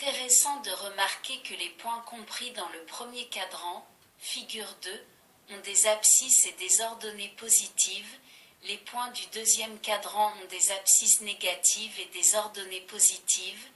de remarquer que les points compris dans le premier cadran, figure 2, ont des abscisses et des ordonnées positives, Les points du deuxième cadran ont des abscisses négatives et des ordonnées positives.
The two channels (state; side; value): identical; both; correlation 1.00